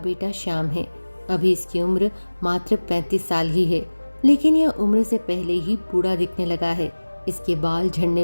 श्याम है। अभी इसकी उम्र मात्र 35 साल ही है, लेकिन यह उम्र से पहले ही बूढ़ा दिखने लगा है। इसके बाल झड़ने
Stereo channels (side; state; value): both; inverted; correlation -1.00